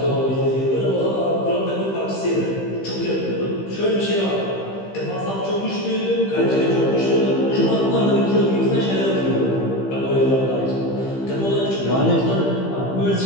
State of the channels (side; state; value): right; late; 15 ms